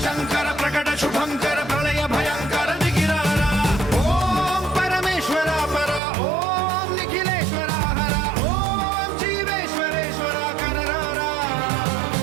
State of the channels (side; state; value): left; drops out; at 6.0 s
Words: శంకర ప్రకట శుభంకర ప్రళయ భయంకర దిగిరారా. ఓం పరమేశ్వర పర, ఓం నిఖిలేశ్వర హర, ఓం జీవేశ్వరేశ్వర కరరారా.